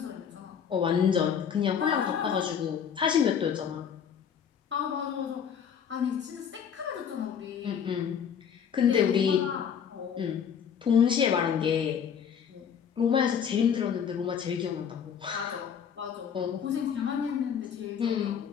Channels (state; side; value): quieter; right; 7.7 dB